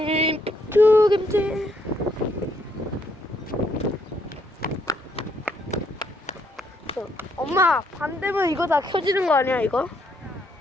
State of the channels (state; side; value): normal; both; correlation 0.73